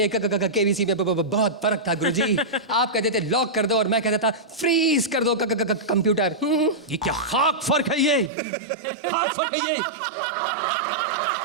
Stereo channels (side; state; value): left; drops out; at 8.3 s